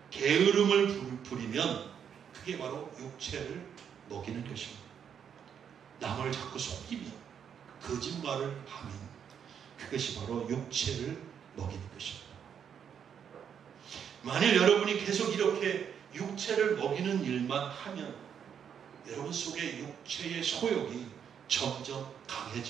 게으름을 부리면 그게 바로 육체를 먹이는 것입니다. 남을 자꾸 속이면, 거짓말을 하면 그것이 바로 육체를 먹이는 것입니다. 만일 여러분이 계속 이렇게 육체를 먹이는 일만 하면 여러분 속에 육체의 소욕이 점점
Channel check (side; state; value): left; quieter; 8.0 dB